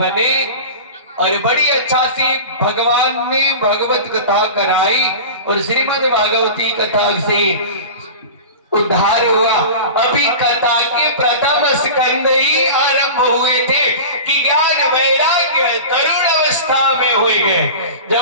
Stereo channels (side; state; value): both; inverted; correlation -0.32